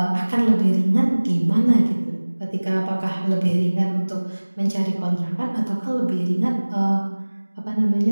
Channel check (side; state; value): both; inverted; correlation -1.00